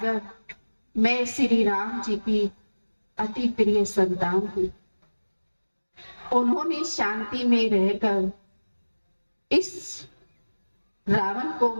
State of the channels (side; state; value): both; inverted; correlation -1.00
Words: मैं श्री राम जी की अति प्रिय संतान हूं। उन्होंने शांति में रहकर इस रावण को